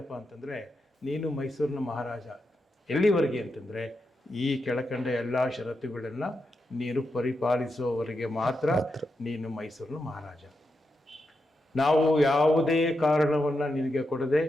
ಅಂತಂದರೆ, ನೀನು ಮೈಸೂರಿನ ಮಹಾರಾಜ ಎಲ್ಲಿವರೆಗೆ ಅಂತಂದರೆ ಈ ಕೆಳಕಂಡ ಎಲ್ಲ ಷರತ್ತುಗಳನ್ನು ನೀನು ಪರಿಪಾಲಿಸುವವರೆಗೆ ಮಾತ್ರ ನೀನು ಮೈಸೂರಿನ ಮಹಾರಾಜ. ನಾವು ಯಾವುದೇ ಕಾರಣವನ್ನು ನಿನಗೆ ಕೊಡದೆ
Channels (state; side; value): normal; both; correlation 0.86